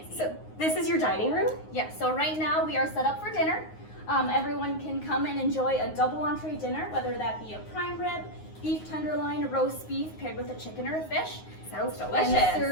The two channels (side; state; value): right; late; 9.5 ms